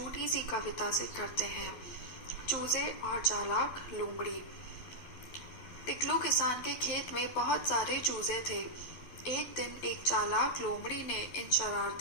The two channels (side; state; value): right; late; 12 ms